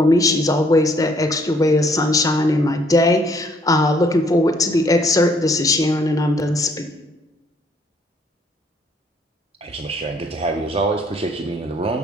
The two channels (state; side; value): normal; both; correlation 0.65